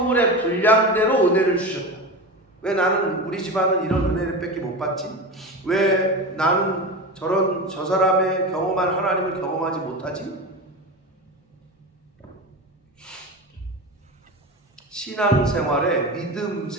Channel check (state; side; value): normal; both; correlation 0.25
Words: 분량대로 은혜를 주셨다. 왜 나는 우리 집안은 이런 은혜를 밖에 못 받지? 왜 나는 저 사람의 경험한 하나님을 경험하지 못하지? 신앙생활에, 믿음